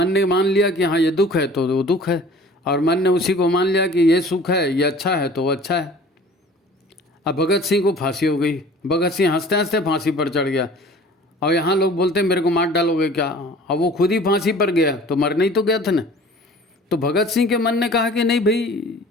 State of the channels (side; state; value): both; normal; correlation 0.47